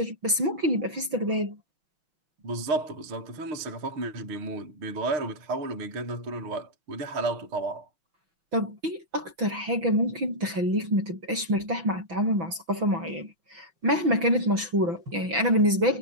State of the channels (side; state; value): left; late; 6.0 ms